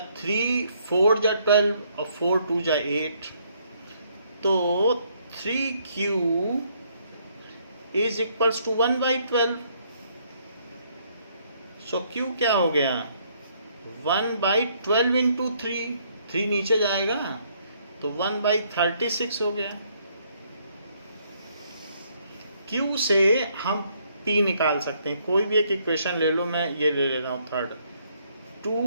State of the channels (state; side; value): inverted; both; correlation -0.69